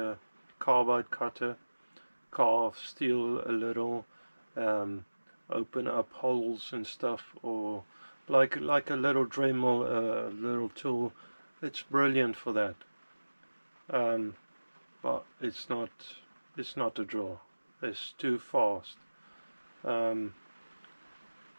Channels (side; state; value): both; inverted; correlation -1.00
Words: carbide cutter, carve steel a little, open up holes and stuff, or like a little Dremel, little tool. It's brilliant for that, but it's not a drill. It's too fast.